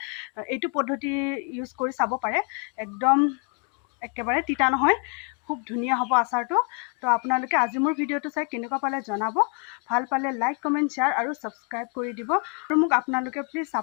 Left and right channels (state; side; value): quieter; right; 38.4 dB